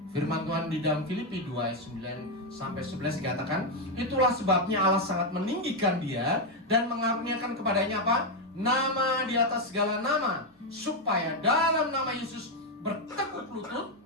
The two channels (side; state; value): both; normal; correlation 0.04